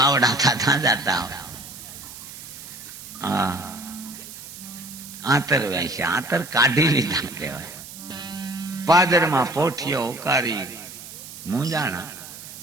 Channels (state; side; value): noise; right; hiss, 14 dB below the sound